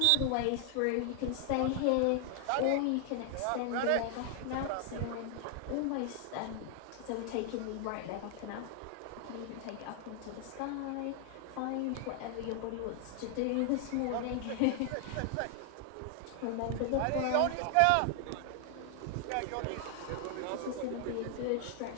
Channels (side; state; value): both; different; correlation 0.00